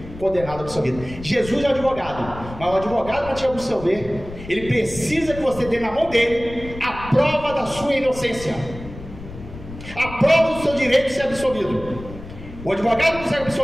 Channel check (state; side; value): noise; left; rumble, 13 dB below the sound